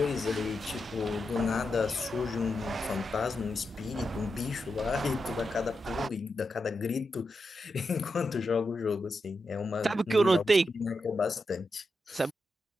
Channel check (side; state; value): both; normal; correlation 0.87